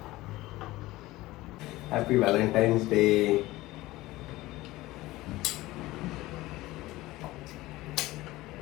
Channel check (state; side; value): quieter; right; 18.4 dB